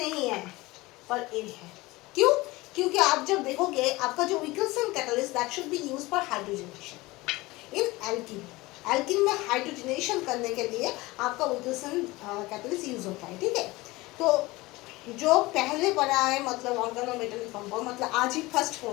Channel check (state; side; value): quieter; right; 20.9 dB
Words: है पर ये है। क्यों? क्योंकि आप जब देखोगे आपका जो Wilkinson catalyst that should be used for hydrogenation in alkene, alkene में हाइड्रोजनेशन करने के लिए आपका विल्किंसन कैटलिस्ट यूज होता है, ठीक है। तो जो पहले पढ़ा है मतलब ऑर्गेनोमेटेलिक कंपाउंड, मतलब आज ही फर्स्ट